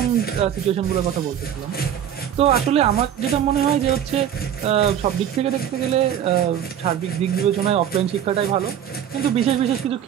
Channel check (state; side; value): quieter; left; 9.8 dB